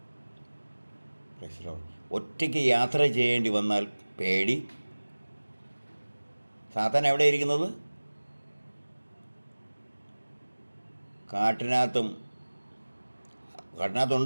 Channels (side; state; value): both; inverted; correlation -1.00